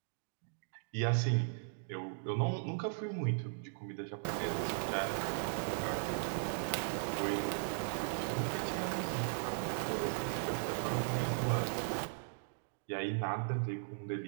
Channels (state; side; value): silent; left; digital silence